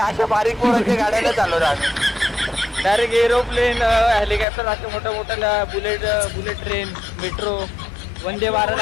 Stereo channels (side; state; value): right; drops out; at 4.5 s